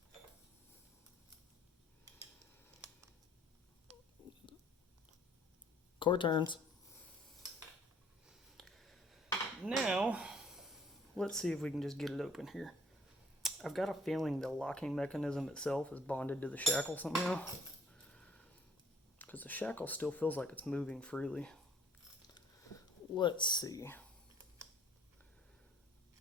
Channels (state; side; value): normal; both; correlation 0.59